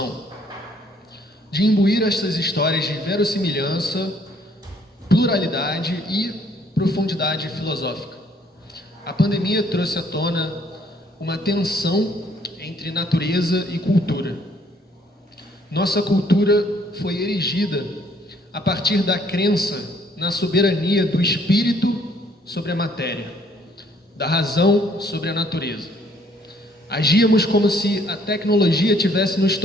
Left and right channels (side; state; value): both; normal; correlation 0.63